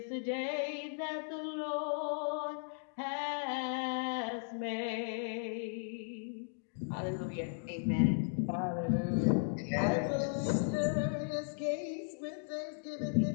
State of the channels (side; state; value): right; silent; digital silence